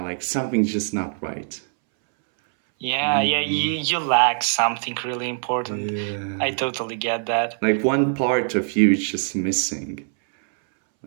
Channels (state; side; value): silent; left; 64 dB below the other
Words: like something's just not right. Yeah, you lack something really important. I Yeah. totally get that. Like one part of you is just missing.